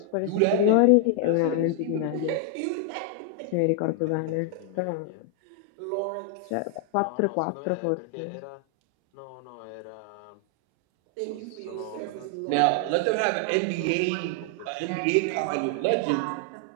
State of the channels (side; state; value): both; different; correlation 0.00